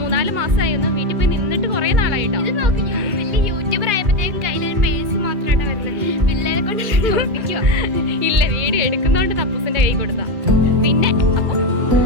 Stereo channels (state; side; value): late; left; 2.2 ms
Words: മാസമായി ഒന്ന് വീട്ടിൽ പോയി നിന്നിട്ട് കുറേ നാളായിട്ടോ. ഇത് നോക്കി വലിയ യൂട്യൂബർ ആയപ്പോഴത്തേക്കും കയ്യിലൊരു പേഴ്സ് മാത്രമായിട്ട് വരുന്നത്. പിള്ളേരെ കൊണ്ട് ഓർപ്പിക്കുക. ഇല്ല, വീഡിയോ എടുക്കുന്നതുകൊണ്ട് തപ്പൂസിൻ്റെ കൈ കൊടുത്താ. പിന്നെ അപ്പം